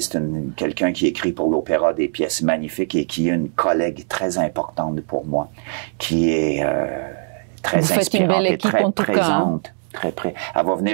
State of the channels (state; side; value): silent; left; digital silence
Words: quelqu'un qui écrit pour l'opéra des pièces magnifiques et qui est une collègue très importante pour moi, qui est très inspirante et très présente. Très près. Elle va